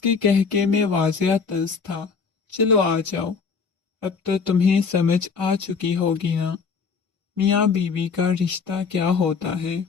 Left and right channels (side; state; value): right; quieter; 5.5 dB